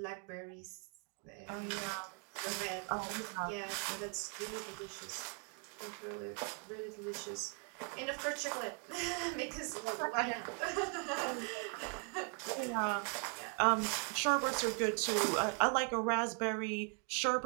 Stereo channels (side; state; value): left; quieter; 39.0 dB